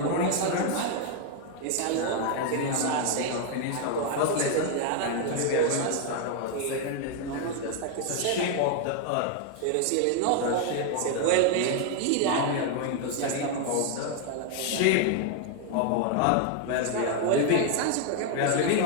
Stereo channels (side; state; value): both; different; correlation 0.00